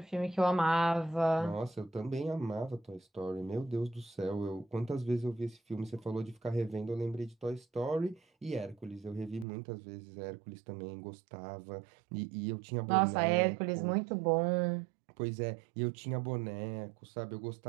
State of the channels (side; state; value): left; drops out; at 9.5 s